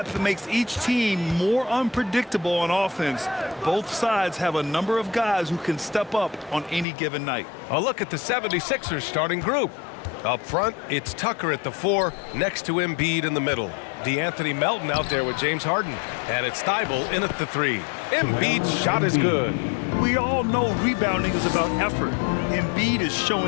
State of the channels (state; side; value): drops out; right; at 6.9 s